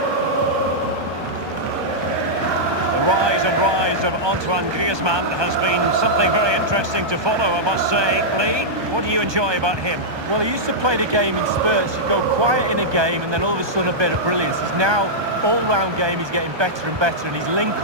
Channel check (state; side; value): late; left; 1.2 ms